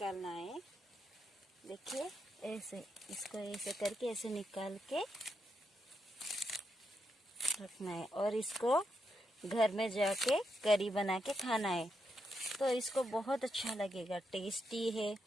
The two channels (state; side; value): normal; both; correlation 0.82